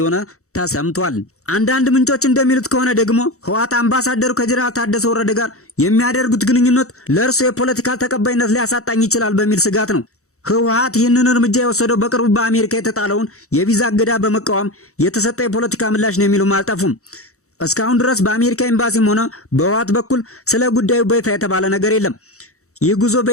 ተሰምቷል። አንዳንድ ምንጮች እንደሚሉት ከሆነ ደግሞ ህወሓት አምባሳደሩ ከጀነራል ታደሰ ወረደ ጋር የሚያደርጉት ግንኙነት ለእርሱ የፖለቲካ ተቀባይነት ሊያሳጣኝ ይችላል በሚል ስጋት ነው። ህወሓት ይህንን እርምጃ የወሰደው በቅርቡ በአሜሪካ የተጣለውን የቪዛ እገዳ በመቃወም የተሰጠ የፖለቲካ ምላሽ ነው የሚሉም አልጠፉም። እስካሁን ድረስ በአሜሪካ ኤምባሲም ሆነ በህወሓት በኩል ስለ ጉዳዩ በይፋ የተባለ ነገር የለም። ይህ ጉዞ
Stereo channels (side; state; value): right; late; 0.64 ms